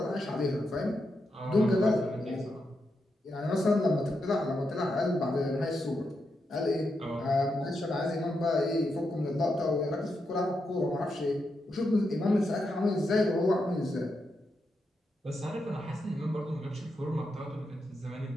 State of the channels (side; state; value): both; normal; correlation 0.85